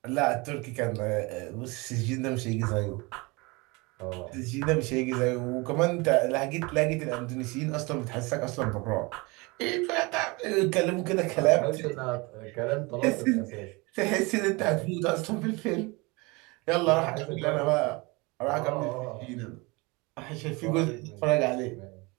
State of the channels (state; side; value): quieter; left; 26.1 dB